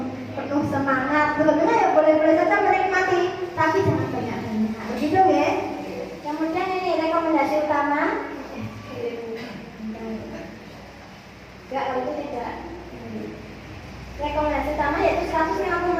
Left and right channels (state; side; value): identical; both; correlation 1.00